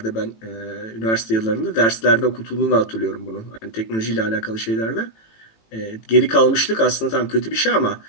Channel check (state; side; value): late; right; 18 ms